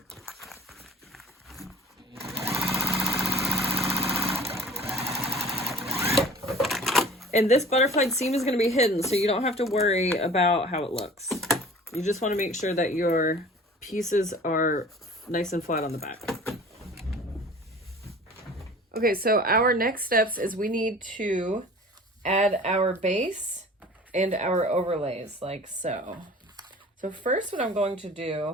And this butterflied seam is going to be hidden, so you don't have to worry about how it looks. You just want to make sure that your pieces are nice and flat on the back. Okay, so our next steps is we need to add our base and our overlays, like so. So first what I'm going to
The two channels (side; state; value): both; normal; correlation 0.45